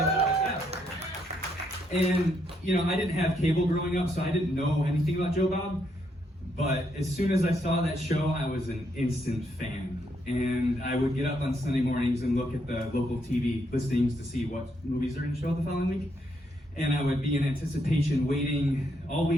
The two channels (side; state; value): both; normal; correlation 0.76